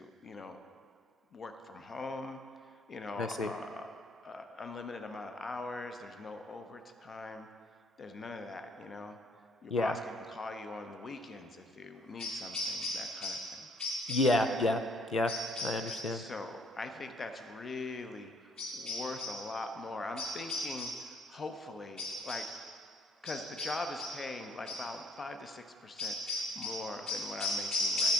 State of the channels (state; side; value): normal; both; correlation 0.62